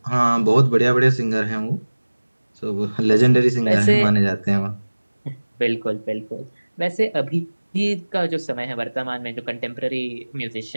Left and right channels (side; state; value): both; inverted; correlation -1.00